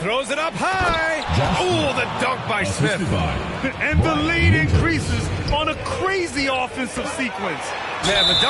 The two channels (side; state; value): both; identical; correlation 1.00